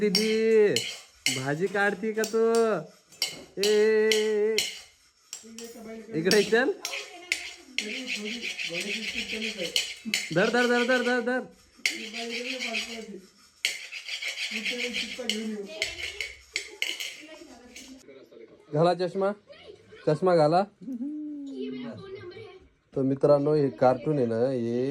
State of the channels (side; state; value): both; identical; correlation 1.00